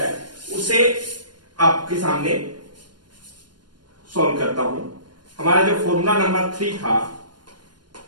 उसे आपके सामने सॉल्व करता हूं। हमारा जो फॉर्मूला नंबर 3 था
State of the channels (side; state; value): left; late; 0.71 ms